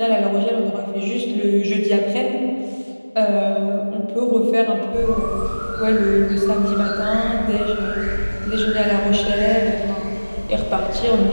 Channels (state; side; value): inverted; both; correlation -1.00